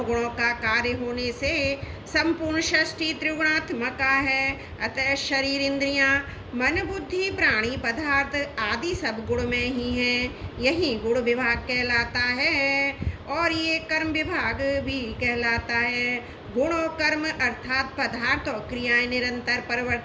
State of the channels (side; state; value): both; identical; correlation 1.00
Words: गुणों का कार्य होने से संपूर्ण षष्ठी त्रिगुणात्मका है। अतः शरीर, इंद्रियां, मन, बुद्धि, प्राणी, पदार्थ आदि सब गुण में ही हैं। यही गुण विभाग कहलाता है और ये कर्म विभाग भी कहलाता है। गुण और कर्म अर्थात पदार्थ और क्रियाएं निरंतर